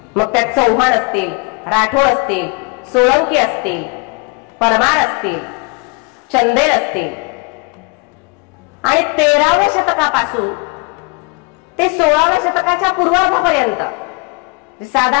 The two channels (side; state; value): right; quieter; 31.5 dB